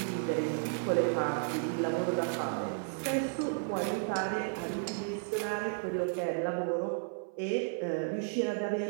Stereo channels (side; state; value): left; silent; 56 dB below the other